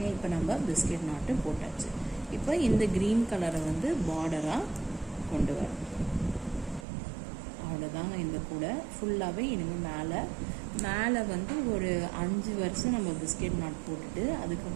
இப்போ நம்ம பிஸ்கெட் நாட்டு போட்டாச்சு. இப்போ இந்த க்ரீன் கலரை வந்து பார்டராக கொண்டு வரும். அவ்வளோதாங்க. இந்த கூடை ஃபுல்லாகவே இனிமேல் மேலே வந்து ஒரு 5 வருஷம் நம்ம பிஸ்கெட் நாட் போட்டுட்டு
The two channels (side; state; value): left; drops out; at 6.9 s